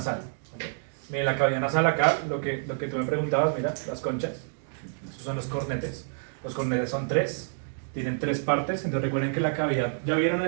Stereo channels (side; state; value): left; silent; digital silence